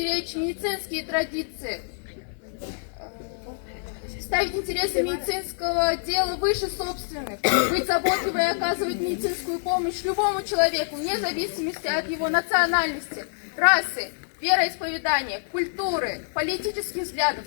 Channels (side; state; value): right; silent; 61 dB below the other